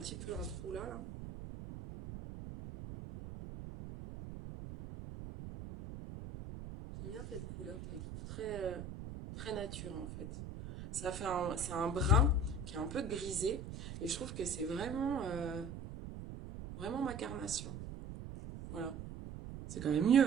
peu un trou là, là. J'aime bien cette couleur, je la trouve très nature en fait. Ça fait c'est un brun qui est un peu grisé et je trouve que c'est vraiment ma carnation. Voilà, c'est quand même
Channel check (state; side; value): noise; right; rumble, 9 dB below the sound